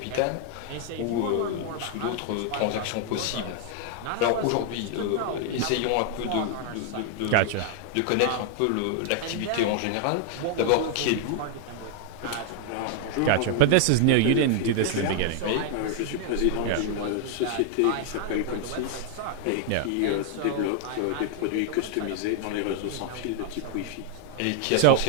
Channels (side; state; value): both; different; correlation 0.00